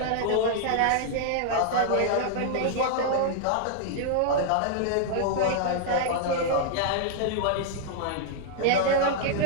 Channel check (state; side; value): different; both; correlation -0.01